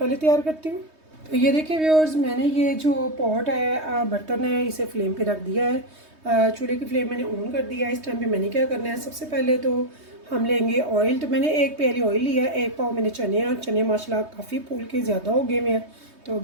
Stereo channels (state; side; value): late; left; 3.2 ms